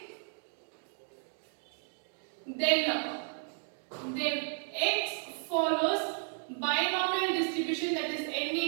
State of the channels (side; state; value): left; silent; 55 dB below the other